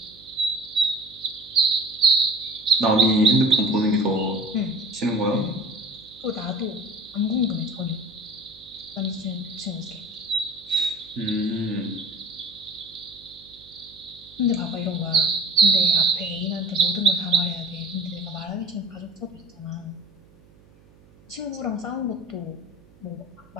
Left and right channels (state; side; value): noise; right; hum, 27 dB below the sound